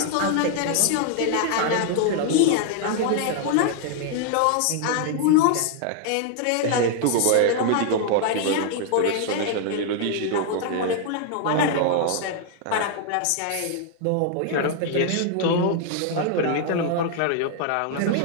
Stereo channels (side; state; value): both; different; correlation 0.00